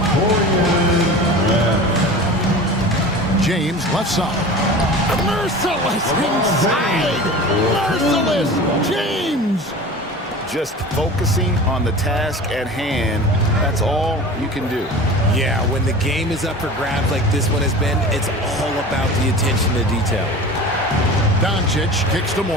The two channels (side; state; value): both; normal; correlation 0.36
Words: James left side. Merciless inside. Merciless James. Just focusing on the task at hand, that's all you can do. Yeah, when the game is up for grabs like this one has been, it's all about the attention to detail. Doncic kicks to